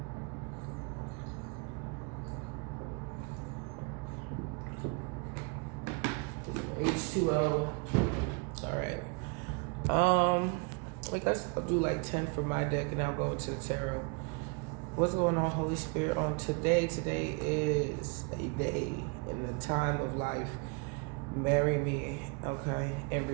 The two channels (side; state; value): left; quieter; 32.8 dB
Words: H2O. All right. I guess I'll do like 10 for my deck and I'll go into the tarot. What's going on, Holy Spirit, on today? Today is a day in the time of life. Marry me, okay? In